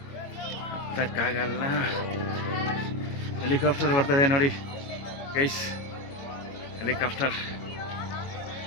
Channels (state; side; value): late; right; 22 ms